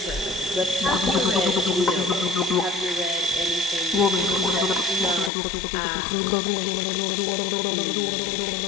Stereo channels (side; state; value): right; drops out; at 5.3 s